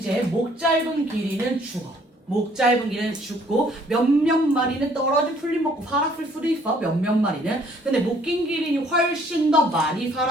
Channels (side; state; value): both; normal; correlation 0.61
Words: 목 짧은 기린은 죽어. 목 짧은 기린은 죽고 몇몇 마리는 떨어진 풀잎 먹고 살았을 수도 있어. 몇몇 마리는. 근데 목 긴 기린이 훨씬 더 많이